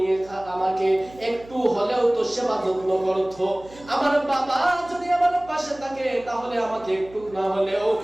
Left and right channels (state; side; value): noise; right; hum, 21 dB below the sound